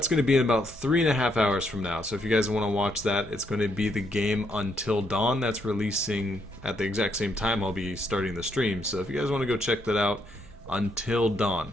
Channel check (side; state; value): both; normal; correlation 0.75